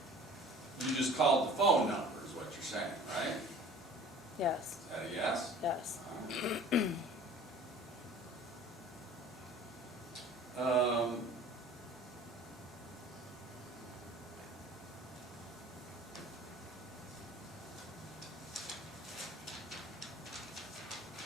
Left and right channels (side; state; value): both; normal; correlation 0.46